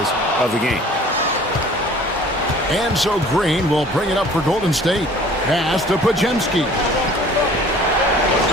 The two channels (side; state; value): both; normal; correlation 0.49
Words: of the game. And so Green will bring it up for Golden State. Pass to Podziemski.